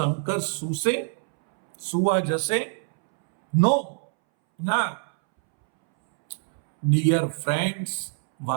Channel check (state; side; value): silent; left; 62 dB below the other